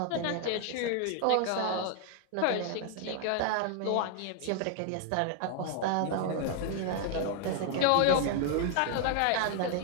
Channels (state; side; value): different; both; correlation 0.00